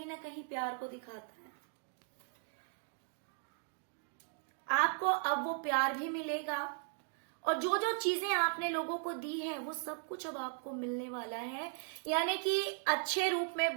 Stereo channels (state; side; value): silent; left; 53 dB below the other